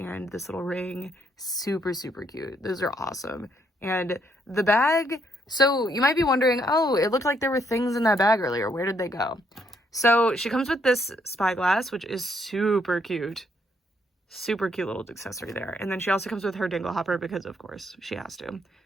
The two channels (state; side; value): normal; both; correlation 0.72